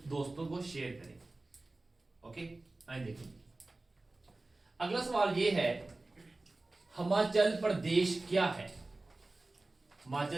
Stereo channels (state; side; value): quieter; left; 3.0 dB